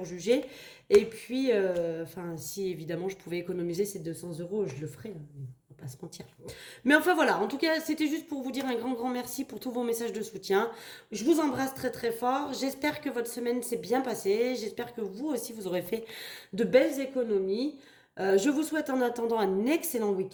juger. Et puis, enfin, si évidemment je pouvais économiser ces 200 euros, je le ferais, hein, on va pas se mentir. Mais enfin voilà, en tout cas, c'était juste pour vous dire un grand, grand merci pour tous vos messages de soutien. Je vous embrasse très, très fort. J'espère que votre semaine s'est bien passée. J'espère que vous aussi, vous aurez fait de belles économies. Je vous souhaite en attendant un excellent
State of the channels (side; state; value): both; identical; correlation 1.00